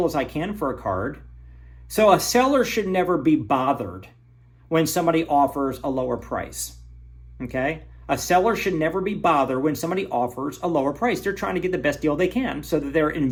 as I can for a card. So a seller should never be bothered when somebody offers a lower price, okay? A seller should never be bothered when somebody offers a lower price. They're trying to get the best deal they can so that their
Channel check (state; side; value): identical; both; correlation 1.00